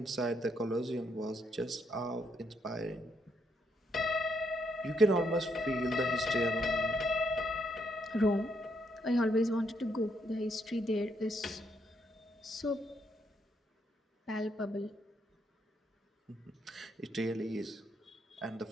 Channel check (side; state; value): both; normal; correlation 0.76